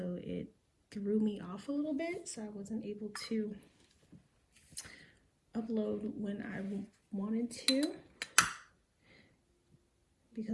it threw me off a little bit, so I wasn't able to upload when I wanted to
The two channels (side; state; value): both; identical; correlation 1.00